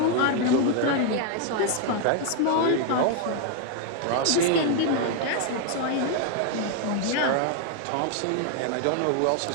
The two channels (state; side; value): different; both; correlation 0.00